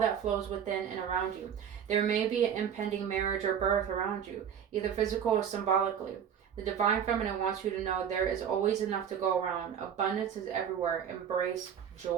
flows within and around you. There may be an impending marriage or birth around you, either physical or symbolically. The Divine Feminine wants you to know there is always enough to go around. Abundance is everywhere. Embrace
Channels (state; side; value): quieter; left; 8.4 dB